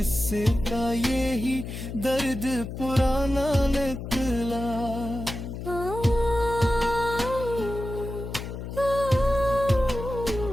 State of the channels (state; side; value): noise; left; hum, 8 dB below the sound